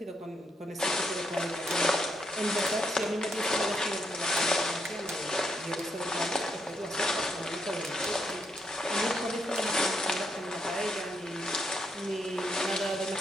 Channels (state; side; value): normal; both; correlation 0.78